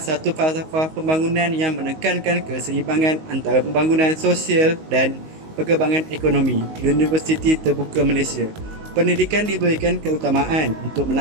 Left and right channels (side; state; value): left; late; 19 ms